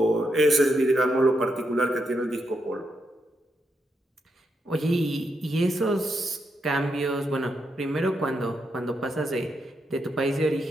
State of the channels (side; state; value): both; normal; correlation 0.81